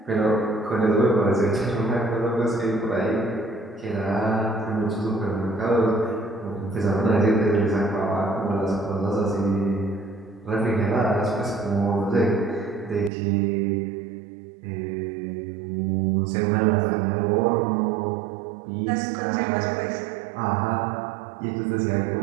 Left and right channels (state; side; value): drops out; left; at 13.1 s